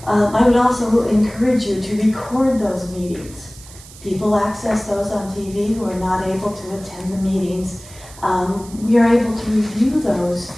I would also encourage you to record those meetings. People access those on TV who are not able to attend the meetings. We are able to review those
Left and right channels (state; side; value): noise; right; hiss, 19 dB below the sound